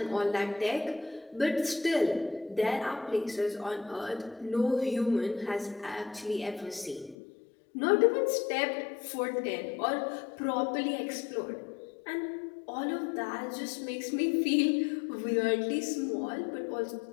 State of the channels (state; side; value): drops out; right; at 7.2 s